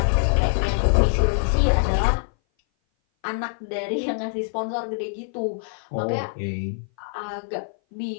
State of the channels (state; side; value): silent; right; 58 dB below the other